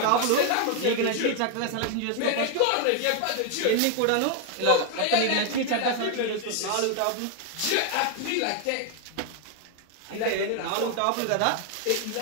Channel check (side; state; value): both; different; correlation 0.01